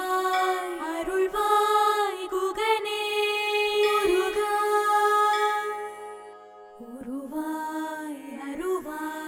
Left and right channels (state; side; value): identical; both; correlation 1.00